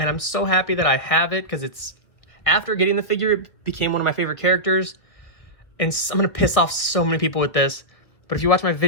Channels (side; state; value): right; late; 1.6 ms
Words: I'm so happy that I have it because it's after getting the figure, it became one of my favorite characters. And I'm gonna piss off so many people with this, but if you watch my